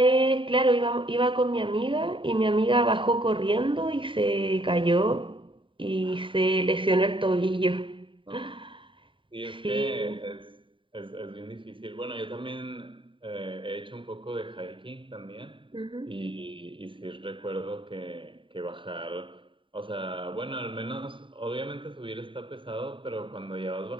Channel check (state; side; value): late; left; 0.25 ms